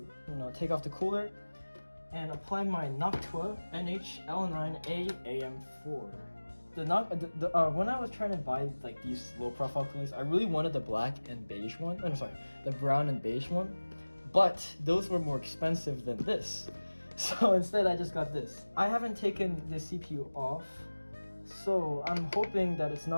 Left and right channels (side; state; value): both; inverted; correlation -1.00